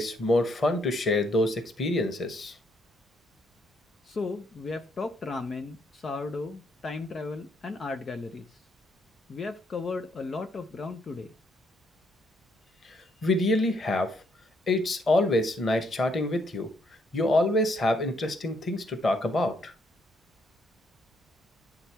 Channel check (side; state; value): both; normal; correlation 0.72